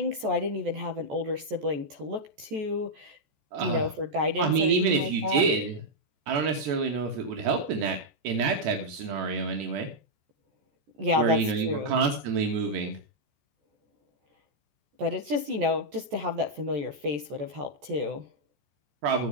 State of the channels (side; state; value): left; late; 14 ms